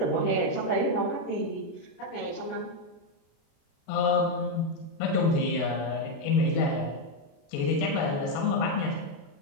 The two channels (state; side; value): late; right; 36 ms